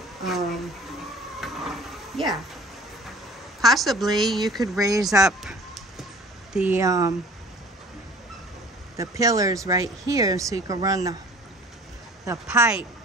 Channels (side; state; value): both; normal; correlation 0.47